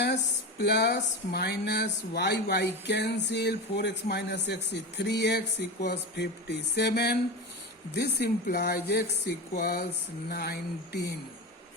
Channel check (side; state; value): both; normal; correlation 0.22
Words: plus minus y cancel, 4x minus x is 3x equals 57. This implies x equals 19.